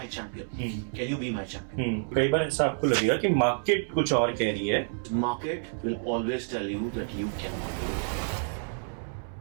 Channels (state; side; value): silent; left; 59 dB below the other